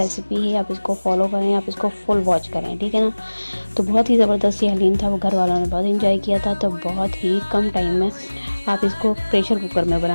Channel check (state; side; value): inverted; both; correlation -1.00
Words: है। आप इसको फॉलो करें, आप इसको फुल वॉच करें, ठीक है ना। तो बहुत ही ज़बरदस्त ये हलीम था, वो घर वालों ने बहुत इंजॉय किया था। तो बहुत ही कम टाइम में आप इसको प्रेशर कुकर में